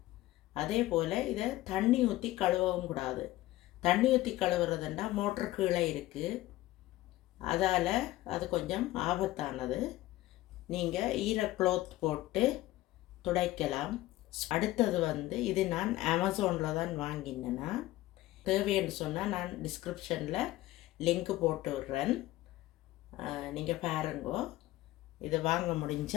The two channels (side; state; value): right; quieter; 16.6 dB